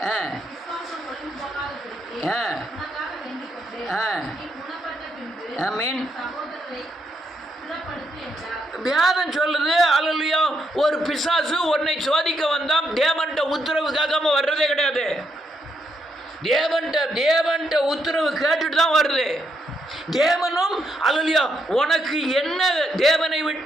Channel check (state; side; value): normal; both; correlation 0.78